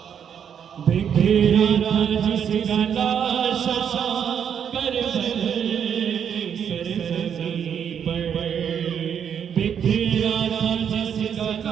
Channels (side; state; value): left; quieter; 8.2 dB